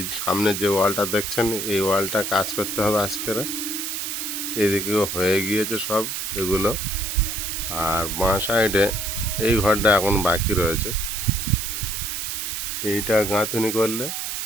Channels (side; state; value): right; noise; hiss, 3 dB below the sound